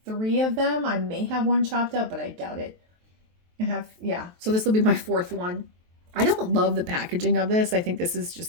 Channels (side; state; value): left; late; 23 ms